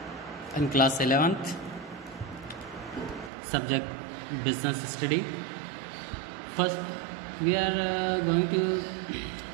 in class 11th. Subject business study. First, we are going to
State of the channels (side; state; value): left; drops out; at 3.3 s